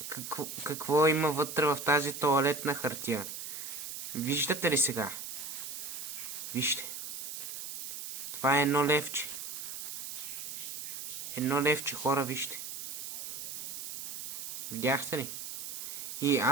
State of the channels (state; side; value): noise; right; hiss, 7 dB below the sound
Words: какво има вътре в тази тоалетна хартия. Виждате ли сега? Вижте. Това е едно левче. Едно левче, хора, вижте. Видяхте ли? И